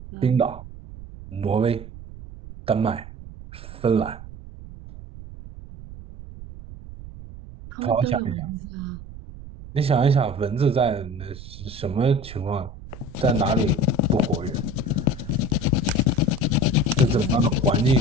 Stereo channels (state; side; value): noise; right; rumble, 14 dB below the sound